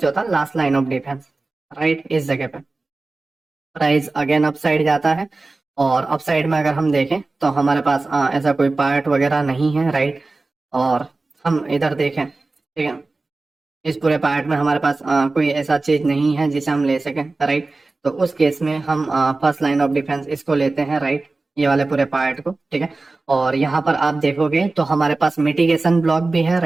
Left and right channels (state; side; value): quieter; left; 3.4 dB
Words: था last line of defence, right. इस जगह पे प्राइस अगेन अपसाइड जाता है और अपसाइड में अगर हम देखें तो हमारे पास ऐसा कोई पार्ट वगैरह नहीं है, राइट। और हम इधर देखें, ठीक है, इस पूरे पार्ट में हमारे पास कोई ऐसा चीज नहीं है जिसे हम ले सकें, राइट। तो उस केस में हम फर्स्ट लाइन ऑफ डिफेंस इसको लेते हैं, राइट, ये वाले पूरे पार्ट को, ठीक है। और यहाँ पर आप देखोगे तो हमारे पास मिटिगेशन ब्लॉक भी है,